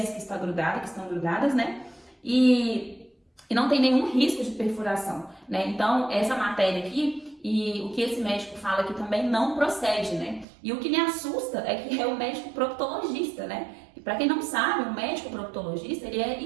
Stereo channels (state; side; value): drops out; left; at 10.5 s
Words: que estão grudadas, E não tem nenhum risco de perfuração, Então, essa matéria aqui e o que esse médico fala aqui também não procede, E o que me assusta é que é o médico proctologista, E para quem não sabe, o médico proctologista, ele é